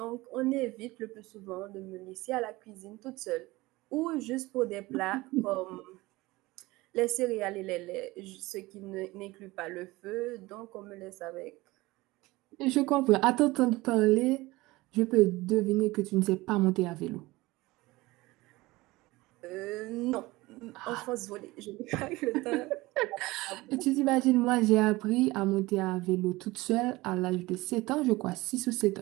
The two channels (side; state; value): left; quieter; 20.4 dB